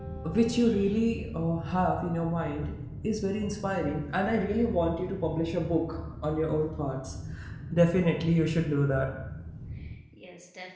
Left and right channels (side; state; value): both; identical; correlation 1.00